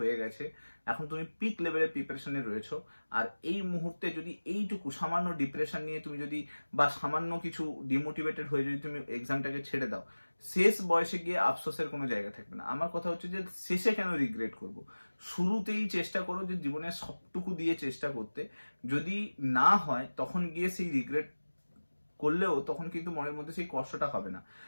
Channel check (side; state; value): both; inverted; correlation -1.00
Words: গেছে, এখন তুমি পিক লেভেলের প্রিপারেশনে রয়েছো। আর এই মুহূর্তে যদি এইটুকু সামান্য ডিপ্রেশন নিয়ে তুমি যদি, বা সামান্য কিছু ডিমোটিভেটেড হয়ে যদি তুমি এক্সামটাকে ছেড়ে দাও, শেষ বয়সে গিয়ে আফসোসের কোনো জায়গা থাকবে না। আমার কথা হচ্ছে যে শেষে কেন রিগ্রেট করব, শুরুতেই চেষ্টা করো যে জীবনের সবটুকু দিয়ে চেষ্টা করতে, যদি না হয় তখন গিয়ে সেই রিগ্রেট করলেও তখন কিন্তু মনের মধ্যে সেই কষ্টটা হবে না।